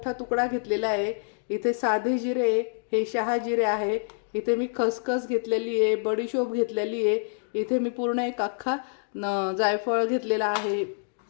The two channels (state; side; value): silent; right; digital silence